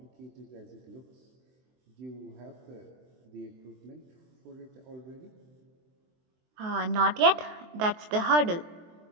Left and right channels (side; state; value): left; late; 23 ms